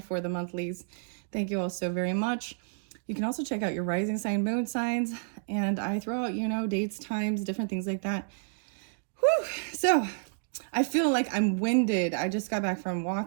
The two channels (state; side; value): silent; left; digital silence